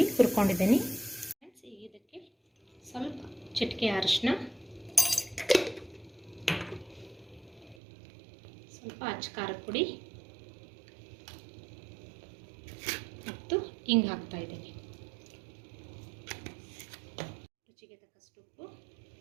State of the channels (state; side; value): drops out; left; at 7.8 s